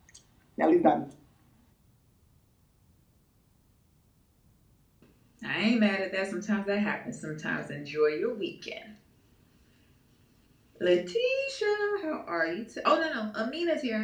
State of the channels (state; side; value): identical; both; correlation 1.00